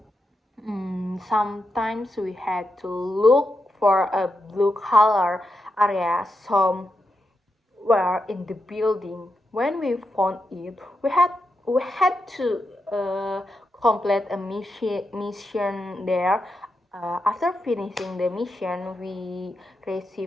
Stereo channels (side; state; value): both; normal; correlation 0.86